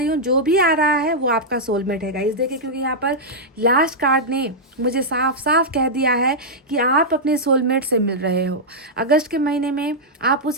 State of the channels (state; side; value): normal; both; correlation -0.07